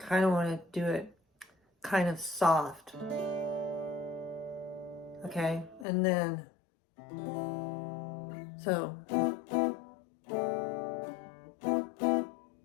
of want to do it kind of soft. Okay? And then, so,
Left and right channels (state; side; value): drops out; right; at 5.9 s